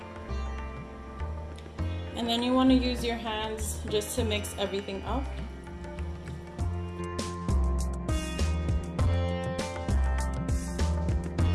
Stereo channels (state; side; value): identical; both; correlation 1.00